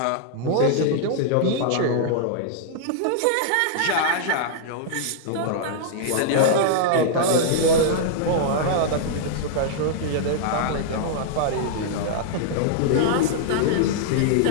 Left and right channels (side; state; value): both; different; correlation -0.01